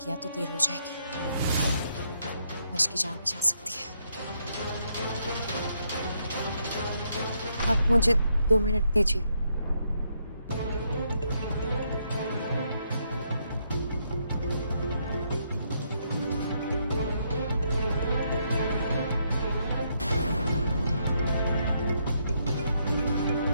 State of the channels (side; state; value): both; inverted; correlation -0.76